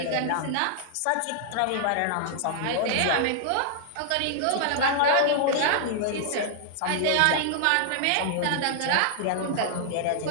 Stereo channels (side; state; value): both; different; correlation -0.01